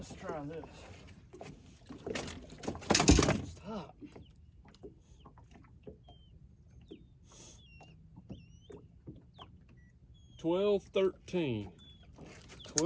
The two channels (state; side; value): identical; both; correlation 1.00